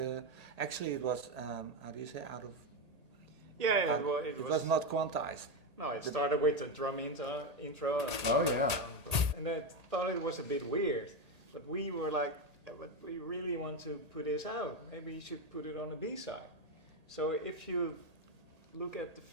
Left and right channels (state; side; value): late; left; 1.8 ms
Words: actually it was, how do you say, out of... Yeah, it was not quantized. No, it started with the drum intro. And I thought it was a bit weird, but we were like, but we really want to put this out. Maybe you should put it on the B-side. So if you look at the